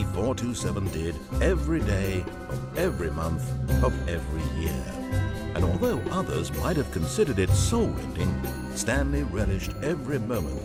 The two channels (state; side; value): identical; both; correlation 1.00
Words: 427 did every day of every month of every year. And although others might have considered it soul-rending, Stanley relished every moment